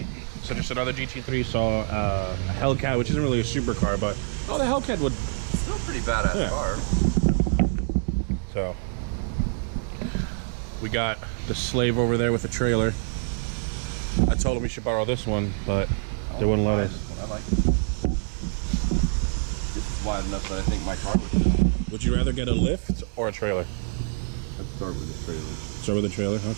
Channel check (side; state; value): left; silent; digital silence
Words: so just another GT3, saw a Hellcat, which isn't really a supercar, but the Hellcat would Still pretty badass car. So we got the Slave over there with the trailer. I told him we should borrow this one, but they wouldn't let us. I like this. This is wide enough that I think my car would fit on it. Would you rather get a lift or a trailer? Let's start with the trailer. Start with the trailer?